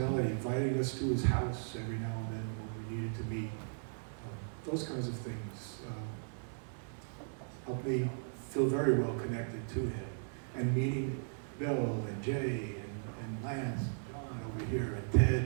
inviting us to his house every now and then when we needed to meet. Those kinds of things helped me feel very well connected to him. And meeting Bill and Jay and Lance and John over here and Ted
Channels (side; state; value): left; silent; digital silence